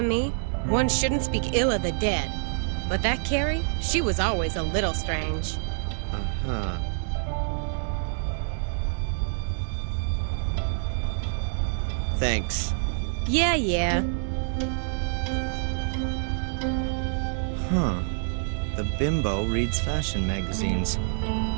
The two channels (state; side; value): silent; left; digital silence